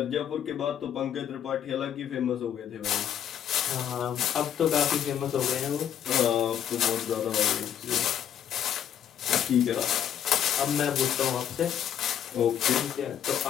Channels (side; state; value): right; quieter; 9.6 dB